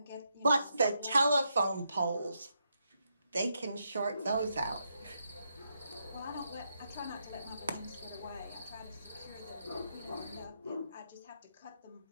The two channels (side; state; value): both; inverted; correlation -0.81